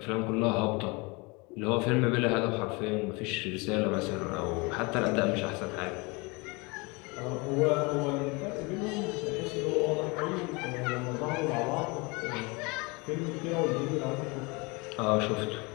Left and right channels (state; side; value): quieter; right; 27.3 dB